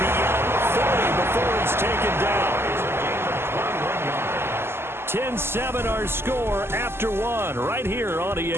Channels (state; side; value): late; left; 0.12 ms